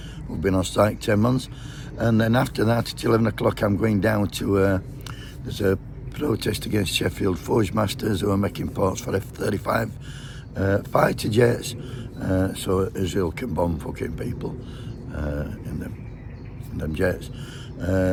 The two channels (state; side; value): identical; both; correlation 1.00